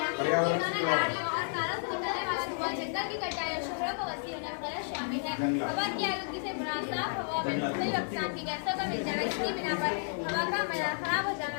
गाड़ियों और कारों से निकलने वाला धुआं, जंगल की कटाई और शहरों को वसी होना वगैरह शामिल है। हवा की आलूगी से मुराद साफ हवा में मुख्तलिफ अक़साम की गैसों का मिल जाना, इसकी बिना पर हवा का मयार खराब हो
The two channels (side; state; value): right; silent; digital silence